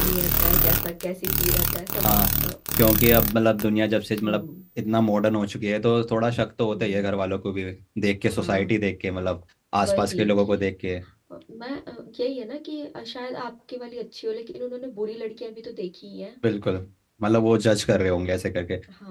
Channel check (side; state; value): both; identical; correlation 1.00